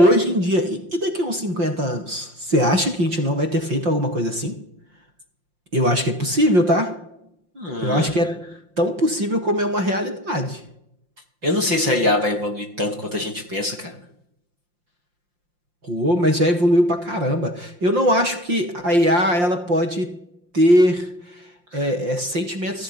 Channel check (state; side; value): late; left; 5.7 ms